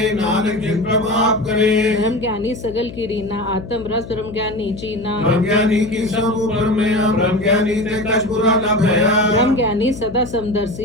नानक जिन प्रभाव करे ब्रह्म ज्ञानी सगल की रीना आत्म रस ब्रह्म ज्ञानी चीना ब्रह्म ज्ञानी की सब ऊपर में ब्रह्म ज्ञानी ते कछ बुरा न भया ब्रह्म ज्ञानी सदा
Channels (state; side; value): noise; left; hum, 13 dB below the sound